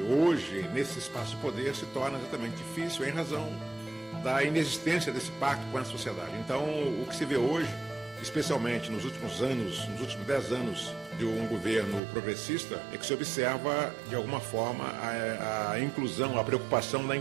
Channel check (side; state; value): left; drops out; at 12.0 s